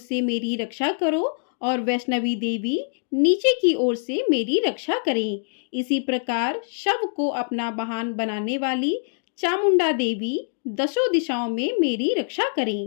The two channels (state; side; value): silent; right; 63 dB below the other